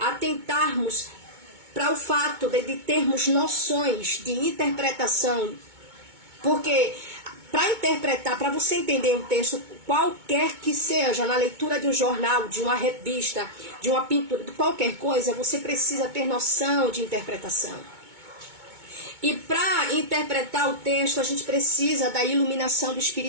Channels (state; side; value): late; left; 2.2 ms